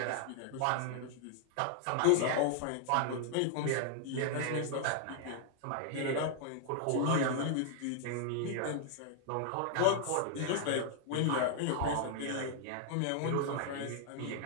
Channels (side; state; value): both; different; correlation -0.01